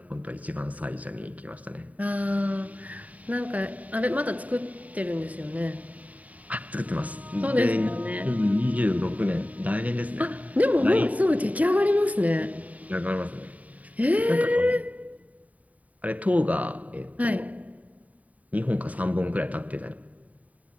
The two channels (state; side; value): late; left; 0.071 ms